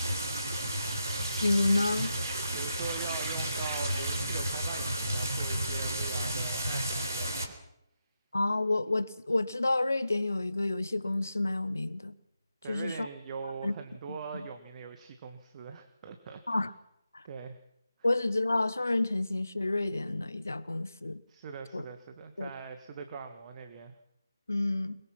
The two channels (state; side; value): inverted; both; correlation -0.87